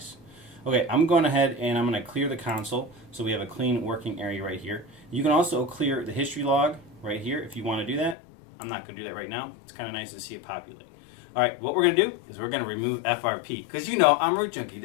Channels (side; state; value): right; drops out; at 8.2 s